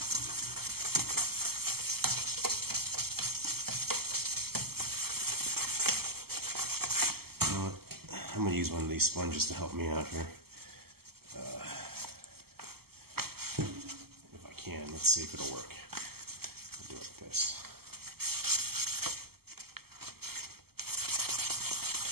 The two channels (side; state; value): left; late; 0.95 ms